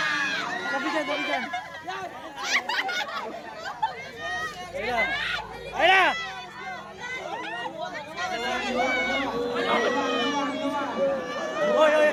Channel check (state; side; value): identical; both; correlation 1.00